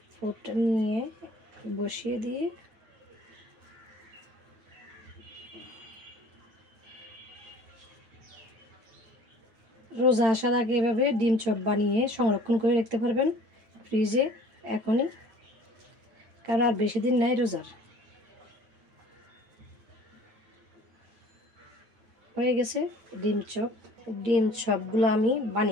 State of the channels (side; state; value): left; late; 8.8 ms